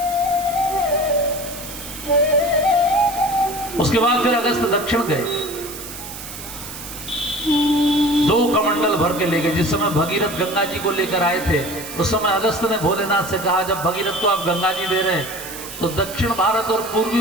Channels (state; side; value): noise; right; hiss, 11 dB below the sound